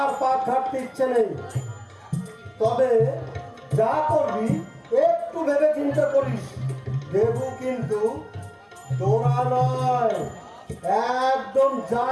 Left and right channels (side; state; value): both; identical; correlation 1.00